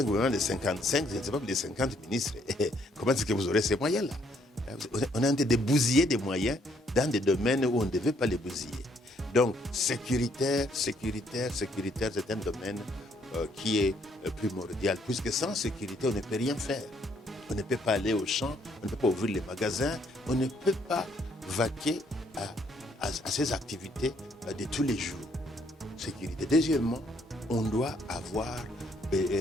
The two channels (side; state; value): both; normal; correlation 0.68